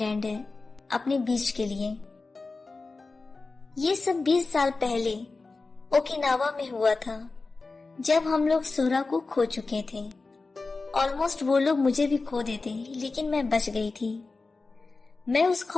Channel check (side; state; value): right; quieter; 3.8 dB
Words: है अपने बीच के लिए। ये सब 20 साल पहले ओकिनावा में हुआ था, जब हम लोग सूरा को खो चुके थे। ऑलमोस्ट वो लोग मुझे भी खो देते, लेकिन मैं बच गई थी। मैं उस